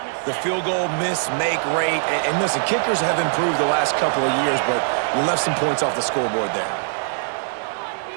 the field goal miss-make rate. And listen, kickers have improved the last couple of years, but we left some points off the scoreboard there.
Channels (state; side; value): silent; left; digital silence